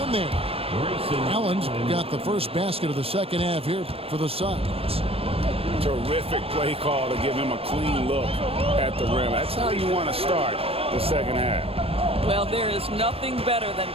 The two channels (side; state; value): left; late; 0.28 ms